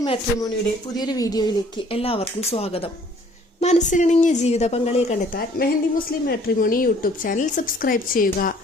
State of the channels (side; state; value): both; normal; correlation 0.57